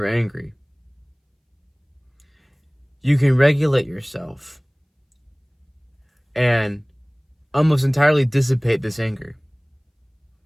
angry, you can regulate yourself and almost entirely dissipate this anger.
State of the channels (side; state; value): both; identical; correlation 1.00